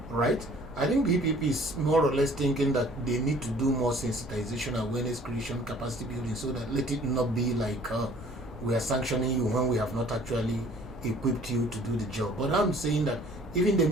right? I think BPP is more or less thinking that they need to do more sensitization, awareness creation, capacity building, so that let it not be like we are sanctioning you when we have not actually equipped you to do the job. But I'm saying that even the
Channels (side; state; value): left; noise; rumble, 16 dB below the sound